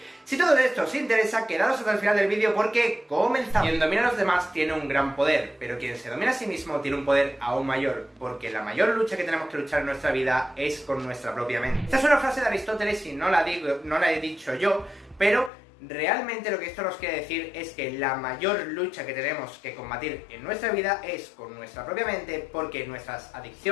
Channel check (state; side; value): drops out; right; at 15.5 s